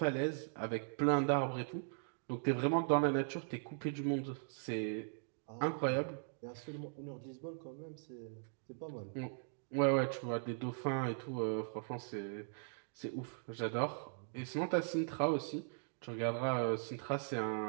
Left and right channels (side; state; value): left; silent; digital silence